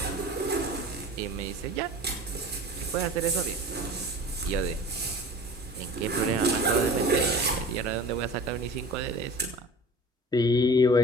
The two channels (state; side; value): normal; both; correlation 0.40